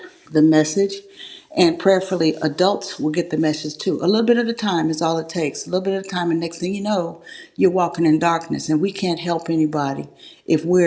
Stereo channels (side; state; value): both; identical; correlation 1.00